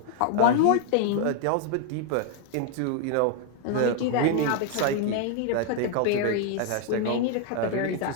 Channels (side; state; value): both; different; correlation 0.00